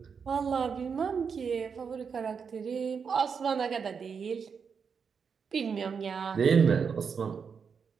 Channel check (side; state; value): left; quieter; 6.2 dB